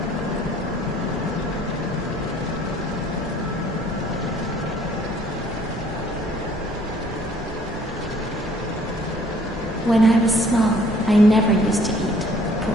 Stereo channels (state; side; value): normal; both; correlation 0.58